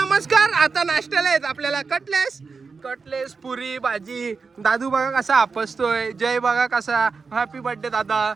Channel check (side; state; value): left; quieter; 4.8 dB